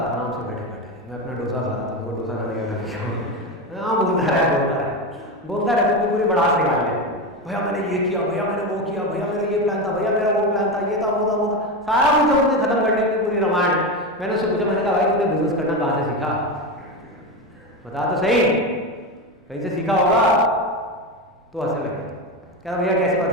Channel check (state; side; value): normal; both; correlation 0.17